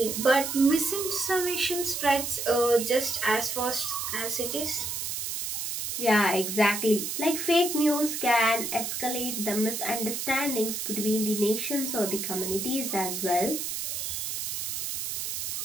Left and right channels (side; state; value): right; noise; hiss, 3 dB below the sound